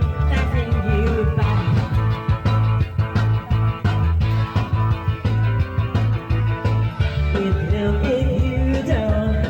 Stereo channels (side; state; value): both; identical; correlation 1.00